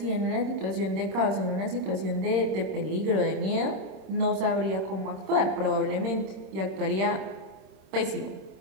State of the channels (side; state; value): left; late; 26 ms